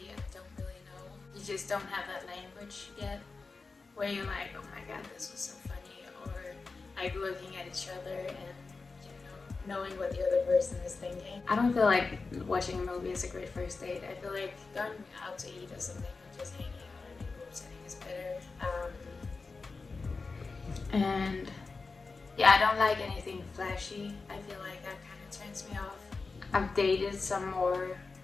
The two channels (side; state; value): right; quieter; 4.1 dB